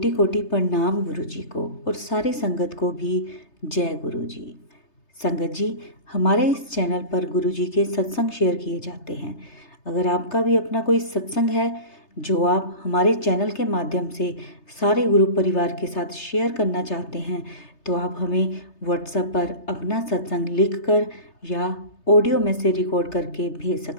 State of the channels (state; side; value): late; right; 3.3 ms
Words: कोटि प्रणाम गुरु जी को और सारी संगत को भी जय गुरु जी। संगत जी, हमारे इस चैनल पर गुरु जी के सत्संग शेयर किए जाते हैं। अगर आपका भी अपना कोई सत्संग है जो आप हमारे चैनल के माध्यम से सारे गुरु परिवार के साथ शेयर करना चाहते हैं तो आप हमें व्हाट्सएप पर अपना सत्संग लिखकर या ऑडियो में से रिकॉर्ड करके भेज